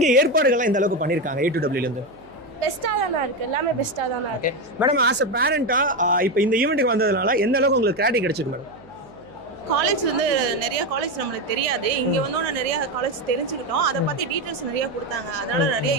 ஏற்பாடுகள்லாம் இந்த அளவுக்கு பண்ணியிருக்காங்க A2Wலேருந்து? பெஸ்ட்டாக தானே இருக்குது, எல்லாமே பெஸ்ட்டாக தானே இருக்குது. மேடம், ஆஸ் அ பேரண்ட்டாக இப்போ இந்த ஈவெண்ட்டுக்கு வந்ததுனால எந்த அளவுக்கு உங்களுக்கு கிளாரிட்டி கிடைச்சிருக்கு மேடம்? காலேஜ் வந்து நிறைய காலேஜ் நம்மளுக்கு தெரியாது. இங்கே வந்தோன்னா நிறைய காலேஜ் தெரிஞ்சுக்கிட்டோம். அதை பற்றி டீட்டெயில்ஸ் நிறைய கொடுத்தாங்க. அதனால நிறைய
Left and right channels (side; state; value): right; noise; hum, 26 dB below the sound